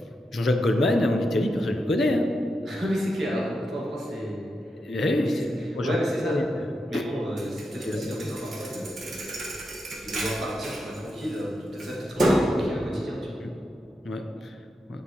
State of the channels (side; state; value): both; normal; correlation 0.86